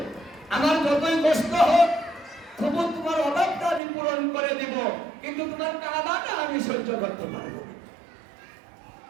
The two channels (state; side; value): drops out; left; at 3.8 s